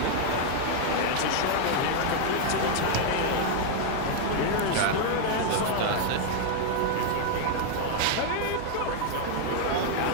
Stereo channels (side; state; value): both; different; correlation 0.00